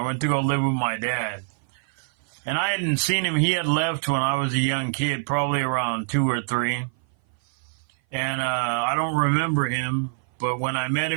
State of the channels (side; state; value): left; silent; 57 dB below the other